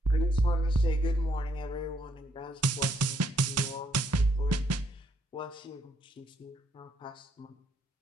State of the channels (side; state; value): both; normal; correlation 0.72